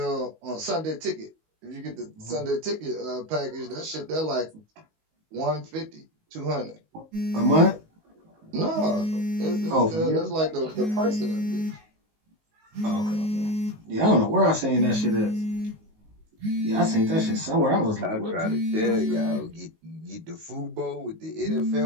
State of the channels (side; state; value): left; late; 19 ms